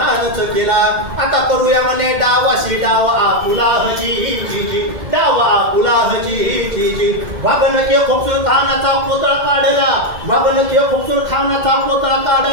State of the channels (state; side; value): late; left; 2.1 ms